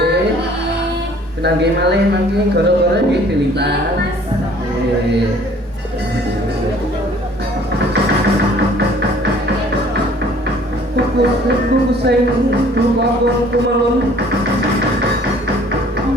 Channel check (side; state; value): both; normal; correlation 0.55